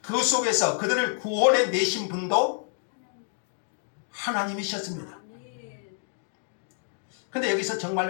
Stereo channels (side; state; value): right; silent; 59 dB below the other